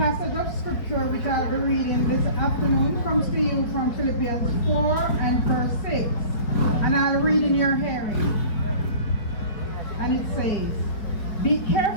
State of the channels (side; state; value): right; late; 4.8 ms